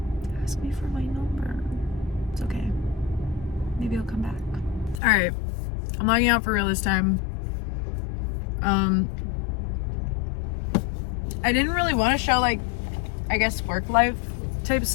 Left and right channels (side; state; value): right; drops out; at 5.0 s